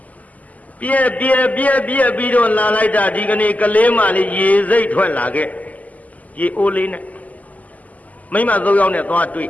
ပြက်ပြီးတော့လာလိုက်တာဒီကနေ့ကလေးမလေးရေစိတ်ထွက်လာခဲ့ရေအိုးလေးနဲ့မိမ၃ယောက်နဲ့သွားတွေ့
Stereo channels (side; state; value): right; late; 0.076 ms